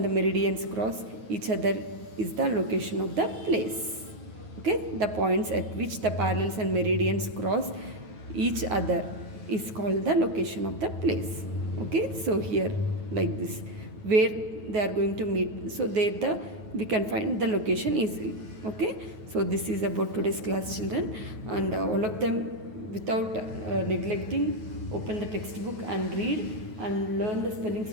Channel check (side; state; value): left; late; 9.3 ms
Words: the meridians cross each other is the location of the place. Okay, the points at which the parallels and meridians cross each other is called the location of the place. Okay, so here like this, where they are going to meet, so there we can find the location easily. Okay, so this is about today's class, children, and all of them without neglecting, open the textbook and read and learn the spellings